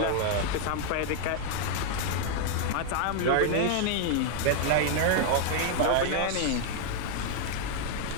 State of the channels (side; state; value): both; different; correlation 0.00